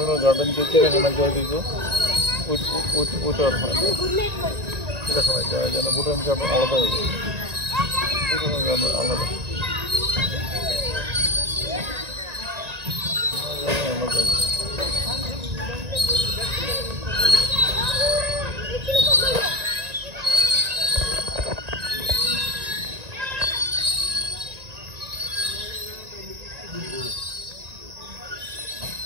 গার্ডেন যে চিড়িয়াখানা যায় দিকে ওইটা আর হয় না, চিড়িয়াখানায় যাওয়া যায় না। ভুটান গার্ডেন আলাদা হয়ে যায়, ভুটানের গার্ডেন আলাদা আলাদা।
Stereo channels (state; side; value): late; left; 1.9 ms